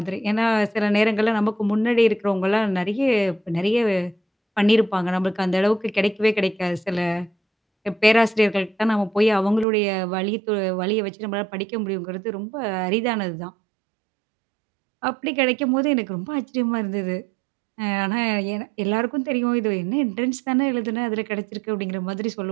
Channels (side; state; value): left; drops out; at 9.7 s